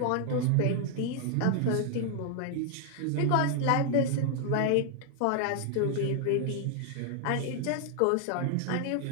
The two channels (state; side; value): different; both; correlation 0.00